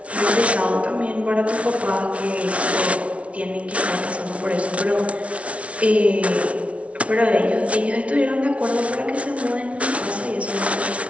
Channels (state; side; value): late; left; 0.063 ms